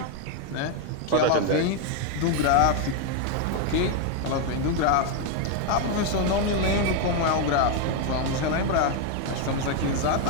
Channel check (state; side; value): different; both; correlation 0.01